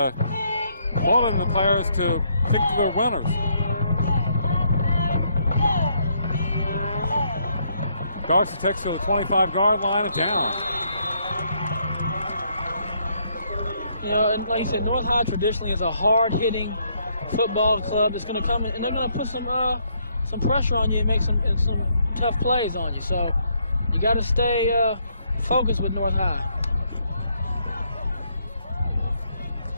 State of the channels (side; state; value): both; inverted; correlation -0.72